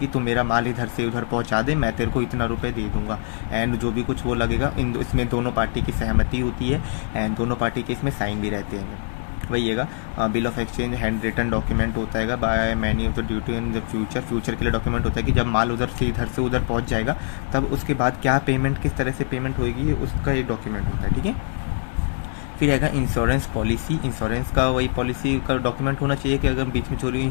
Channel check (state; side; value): silent; right; digital silence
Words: तुम मेरा माल इधर से उधर पहुंचा दे, मैं तेरे को इतना रुपए दे दूंगा, एंड जो भी कुछ वो लगेगा इसमें दोनों पार्टी की सहमति होती है, एंड दोनों पार्टी के इसमें साइन भी रहते हैं, वही है bill of exchange handwritten document होता है by many of the duty in the future के लिए डॉक्यूमेंट होता है कि जब माल उधर से इधर से उधर पहुंच जाएगा तब उसके बाद क्या पेमेंट, किस तरह से पेमेंट होगी, उसका एक डॉक्यूमेंट होता है, ठीक है। फिर आएगा इंश्योरेंस पॉलिसी, इंश्योरेंस का वही पॉलिसी का डॉक्यूमेंट होना चाहिए कि अगर बीच में चोरी